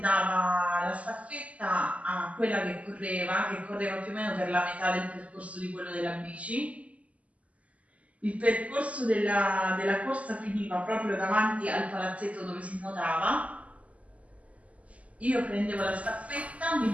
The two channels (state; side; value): late; left; 0.068 ms